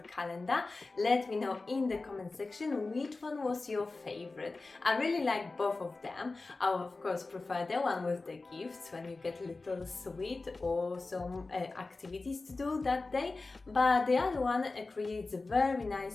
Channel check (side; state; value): right; quieter; 3.6 dB